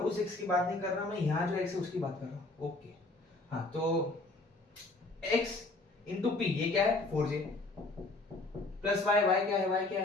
x की बात नहीं कर रहा, मैं यहाँ जो x है उसकी बात कर रहा हूँ। ओके हाँ, तो x इंटू p, ये क्या है 4j प्लस y, y क्या है, y क्या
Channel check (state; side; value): quieter; right; 3.1 dB